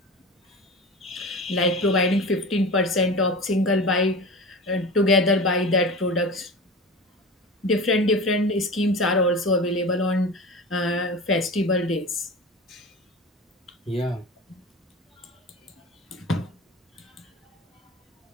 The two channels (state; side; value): normal; both; correlation 0.31